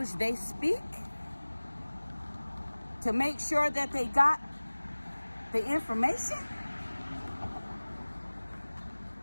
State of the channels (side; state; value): both; inverted; correlation -1.00